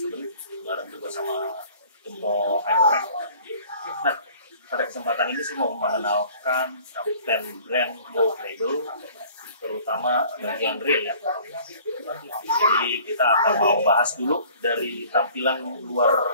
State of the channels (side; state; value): both; inverted; correlation -0.51